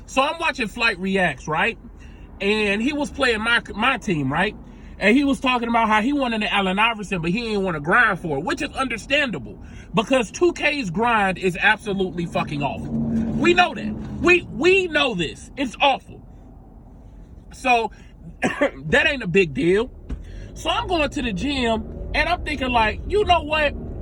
So I'm watching Flight Reacts, right? And he was playing my team, right? And he was talking about how he wanted an Allen Iverson, but he didn't want to grind for it, which is understandable because 2K's grind is absolutely fucking awful. We know that. We know this. It's awful. So that ain't a big deal. So I'm going to the gym and I'm thinking like, you know what?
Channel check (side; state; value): both; identical; correlation 1.00